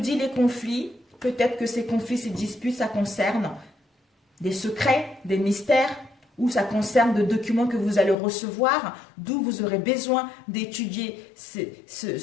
les conflits, peut-être que ces conflits, ces disputes, ça concerne des secrets, des mystères, ou ça concerne de documents que vous allez recevoir, d'où vous aurez besoin d'étudier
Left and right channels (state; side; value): drops out; right; at 8.2 s